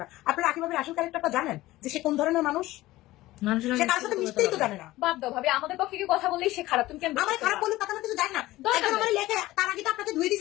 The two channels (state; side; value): quieter; right; 17.3 dB